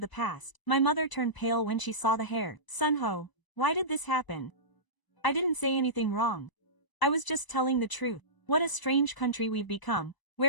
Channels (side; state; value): right; late; 1.0 ms